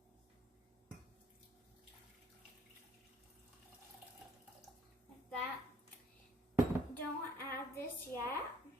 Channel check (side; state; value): both; normal; correlation 0.62